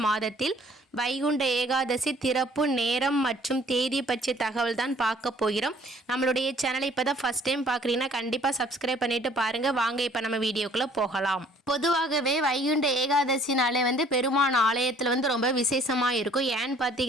மாதத்தில் வைகுண்ட ஏகாதசி திறப்பு நேரம் மற்றும் தேதி பற்றிய தகவல் தான் பார்க்க போகிறோம். நம்மளுடைய சேனலை இப்போ தான் ஃபஸ்ட் டைம் பார்க்குறீங்கன்னா கண்டிப்பாக சப்ஸ்கிரைப் பண்ணிவிட்டு பாருங்கள். வாங்க இப்போ நம்ம வீடியோக்குள்ளே போகலாம். பொதுவாகவே வைகுண்ட ஏகாதசினாலே பெருமான் ஆலயத்தில் ரொம்ப விசேஷமாக இருக்கும். ஏன்னு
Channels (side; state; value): both; normal; correlation 0.57